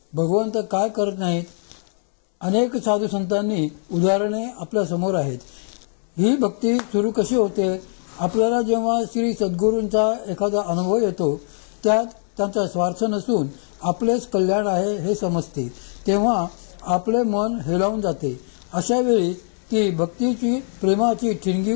भगवंत काय करत नाहीत, अनेक साधू संतांनी उदाहरणे आपल्या समोर आहेत. ही भक्ती सुरू कशी होते? आपल्याला जेव्हा श्री सद्गुरूंचा एखादा अनुभव येतो, त्यात त्यांचा स्वार्थ नसून आपलेच कल्याण आहे हे समजते, तेव्हा आपले मन हेलावून जाते. अशा वेळी ती भक्तीची प्रेमाची ठिणगी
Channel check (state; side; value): silent; right; 64 dB below the other